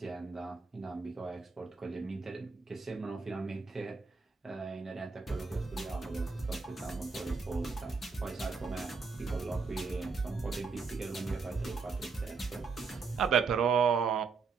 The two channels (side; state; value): left; quieter; 4.8 dB